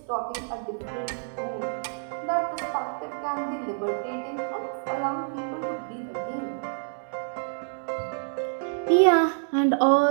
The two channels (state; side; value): silent; left; digital silence